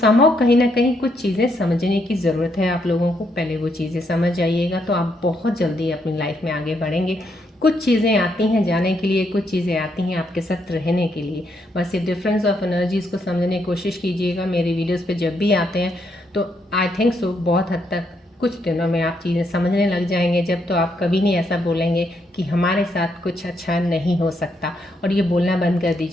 कहीं ना कहीं कुछ चीज़ें समझने की ज़रूरत है आप लोगों को, पहले वो चीज़ें समझ जाइएगा तो आप बहुत जल्दी अपनी लाइफ में आगे बढ़ेंगे। कुछ चीज़ें आती हैं जाने के लिए, कुछ चीज़ें आती हैं आपके साथ रहने के लिए, बस ये डिफरेंस ऑफ एनर्जीज़ को समझने की कोशिश कीजिएगा। मेरे वीडियोस पे जब भी आते हैं तो आई थिंक सो बहुत हद तक कुछ दिनों में आप चीज़ें समझने लग जाएंगे, जब तो आप कभी नहीं ऐसा बोलेंगे कि हमारे साथ कुछ अच्छा नहीं हो सकता, और ये बोलना बंद कर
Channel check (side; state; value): both; normal; correlation 0.76